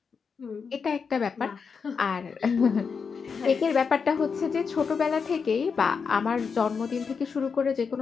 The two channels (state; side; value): quieter; right; 5.7 dB